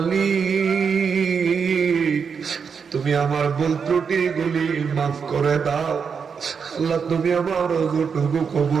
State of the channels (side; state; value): left; quieter; 6.2 dB